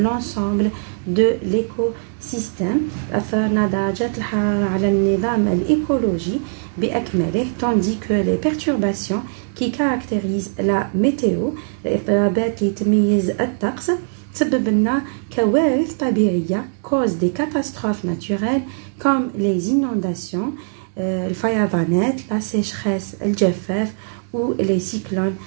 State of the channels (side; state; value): left; silent; 65 dB below the other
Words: de l'écosystème. أثرنا درجات الحرارة على النظام الإيكولوجي بأكمله, tandis que les perturbations qui caractérisent la météo, الاضطرابات اللي تميز الطقس, تسبب لنا كوارث طبيعية, cause des catastrophes naturelles comme les inondations, الفيضانات, la sécheresse, الجفاف, ou les cyclones